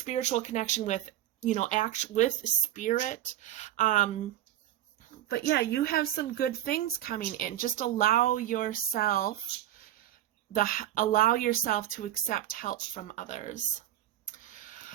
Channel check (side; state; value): left; quieter; 12.9 dB